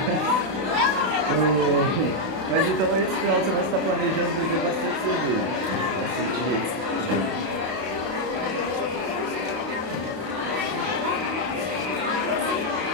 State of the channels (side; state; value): left; late; 32 ms